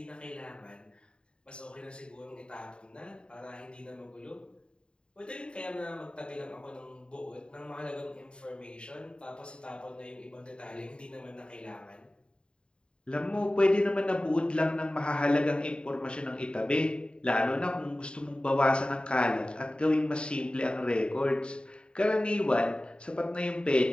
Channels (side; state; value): right; late; 0.052 ms